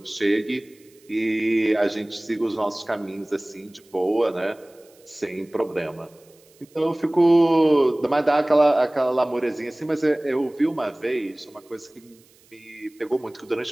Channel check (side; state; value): right; noise; hiss, 30 dB below the sound